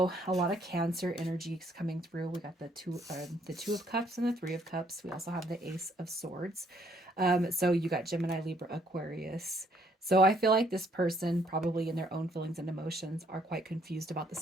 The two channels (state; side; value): normal; both; correlation 0.67